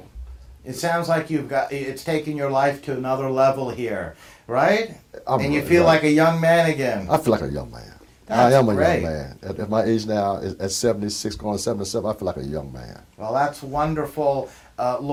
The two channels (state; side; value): identical; both; correlation 1.00